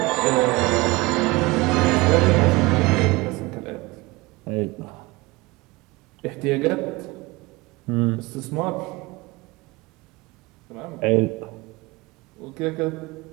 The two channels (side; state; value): left; quieter; 22.6 dB